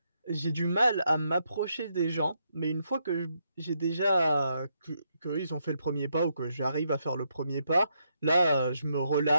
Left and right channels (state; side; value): inverted; both; correlation -0.78